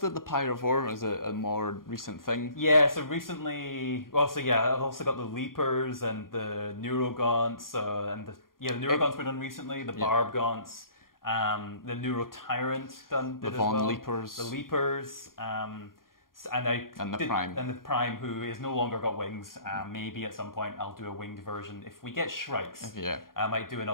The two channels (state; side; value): late; right; 0.91 ms